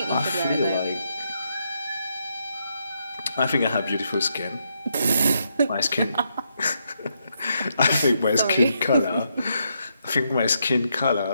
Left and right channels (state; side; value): inverted; both; correlation -0.79